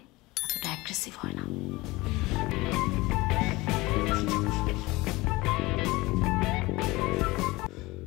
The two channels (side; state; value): right; quieter; 21.4 dB